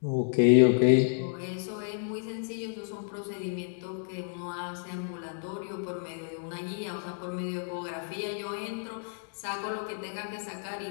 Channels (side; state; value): right; silent; digital silence